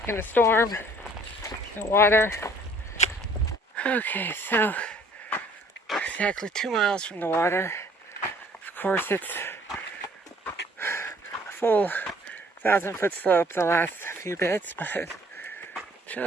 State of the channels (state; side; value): normal; both; correlation 0.56